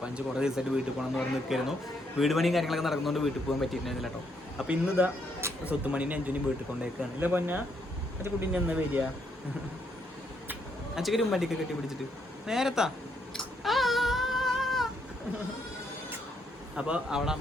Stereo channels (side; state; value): both; normal; correlation 0.74